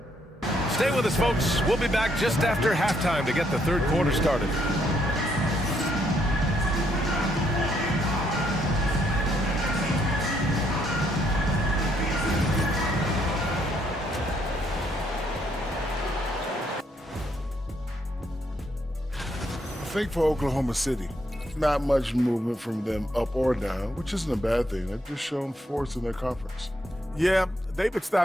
Stay with us, folks. We'll be back just after halftime to get the third quarter started. I think for Oklahoma City, not much movement from them up or down, which isn't a bad thing. They've just shown force in their conference. Yeah, they've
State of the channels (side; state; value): both; normal; correlation 0.73